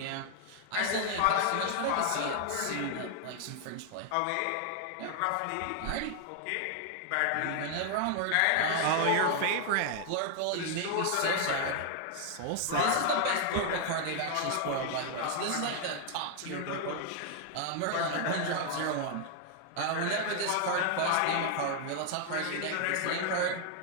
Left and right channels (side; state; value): both; different; correlation 0.00